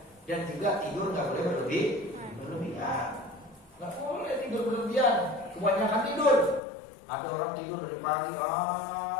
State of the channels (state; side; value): drops out; right; at 6.6 s